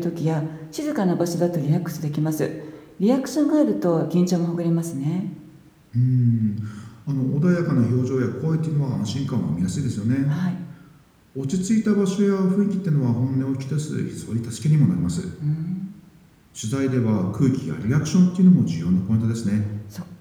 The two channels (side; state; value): both; identical; correlation 1.00